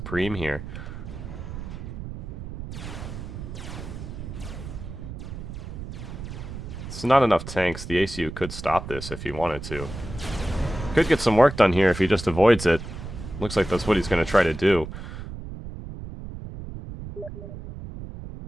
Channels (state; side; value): noise; right; rumble, 9 dB below the sound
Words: here. It's not enough tanks. The ACU could stop this if he wanted to. Could get some work done here if he just avoids it. Looks like that's what he's going to try to do.